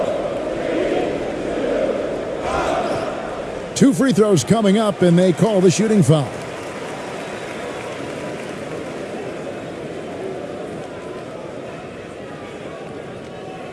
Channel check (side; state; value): both; identical; correlation 1.00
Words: Two free throws coming up, and they call the shooting foul.